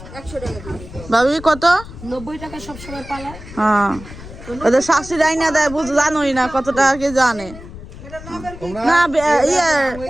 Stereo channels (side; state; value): left; noise; rumble, 15 dB below the sound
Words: 100 টাকা ভাবি কত, 90 টাকা সবসময় পালা। হ্যাঁ ওদের শাশুড়ি আইনা দেয়, জানোই না কত টাকা কে জানে না। ইয়ে